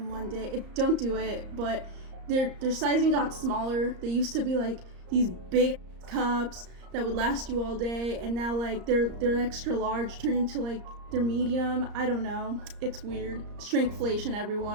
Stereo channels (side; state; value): left; late; 34 ms